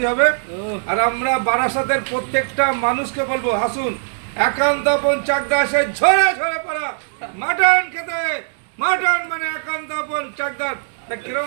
হবে। আর আমরা বারাসাতের প্রত্যেকটা মানুষকে বলবো, আসুন একান্তপন চাকদা এসে ঝরে ঝরে পড়া মাটন খেতে। মাটন মানে একান্তপন চাকদার।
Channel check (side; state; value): left; silent; digital silence